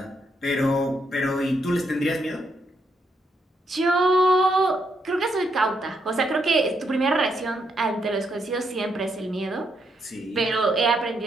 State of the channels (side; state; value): both; normal; correlation 0.77